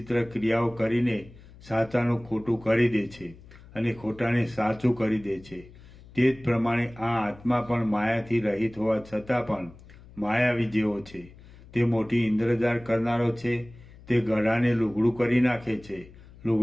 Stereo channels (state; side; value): noise; left; hum, 21 dB below the sound